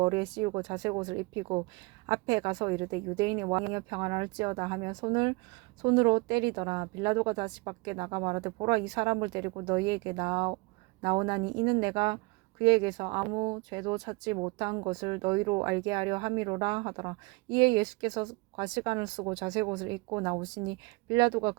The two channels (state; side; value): quieter; left; 24.9 dB